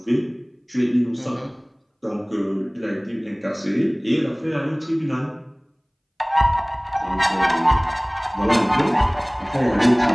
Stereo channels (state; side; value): identical; both; correlation 1.00